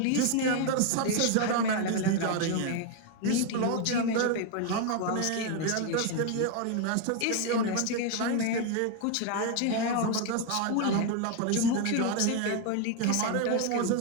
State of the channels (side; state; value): both; different; correlation 0.01